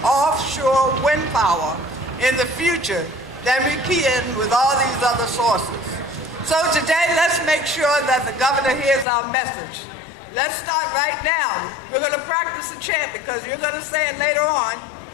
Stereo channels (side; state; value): right; drops out; at 9.1 s